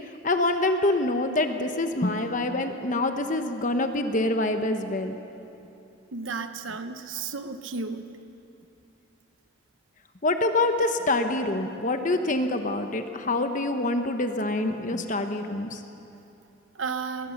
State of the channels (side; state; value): both; normal; correlation 0.18